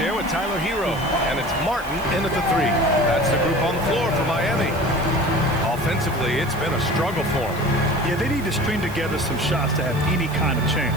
with Tyler Hero. And it's Martin in at the 3. That's the group on the floor for Miami. Offensively, it's been a struggle for them. Yeah, they need to string together some shots to have any kind of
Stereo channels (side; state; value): right; noise; hiss, 18 dB below the sound